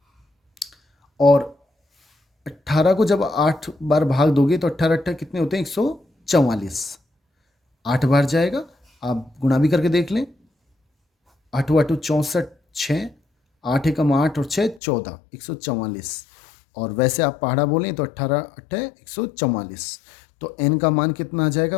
और 18 को जब 8 बार भाग दोगे तो 18 कितने होते हैं? 144। 8 बार जाएगा, आप गुणा भी करके देख लें। 8 8 64, 6, 8 एकम 8 और 6 14, 144। और वैसे आप पहाड़ा बोलें तो 18 8 144। तो n का मान कितना आ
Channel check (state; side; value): drops out; right; at 14.8 s